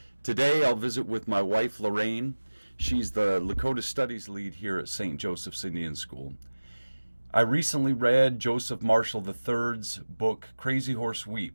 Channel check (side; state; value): both; inverted; correlation -1.00